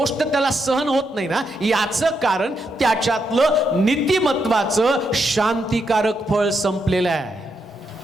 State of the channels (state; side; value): normal; both; correlation 0.81